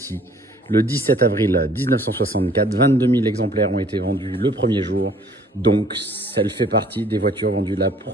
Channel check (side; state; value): both; normal; correlation 0.57